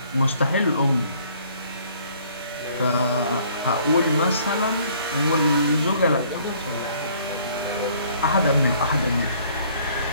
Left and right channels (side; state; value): both; inverted; correlation -0.60